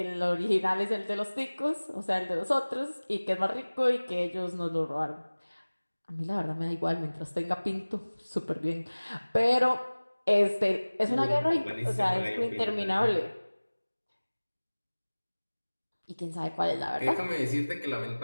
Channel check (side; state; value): both; inverted; correlation -1.00